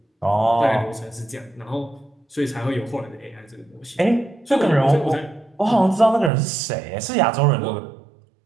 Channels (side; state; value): left; drops out; at 6.3 s